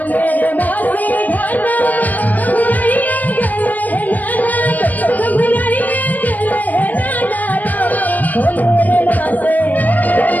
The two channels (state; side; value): late; right; 0.081 ms